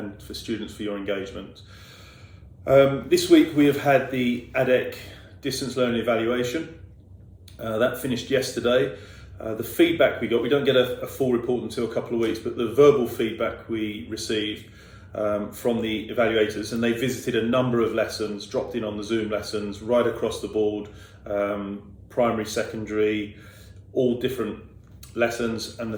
for students for your engagement. This week we have had the ADEC distance learning evaluation. That finished yesterday. The feedback we got, we don't get a full report until a couple of weeks, but the verbal feedback we received from the evaluators, and they visited a number of lessons, dropped in on the Zoom lessons right across the board, primary, secondary, all different lessons, and the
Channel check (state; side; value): identical; both; correlation 1.00